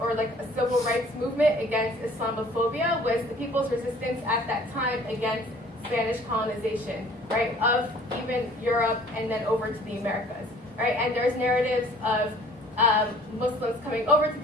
like a civil rights movement against Islamophobia was the people's resistance at that time against Spanish colonization, right, of even Europe and then over to the Americas, right? And there's narratives of Muslims coming over to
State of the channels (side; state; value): both; normal; correlation 0.52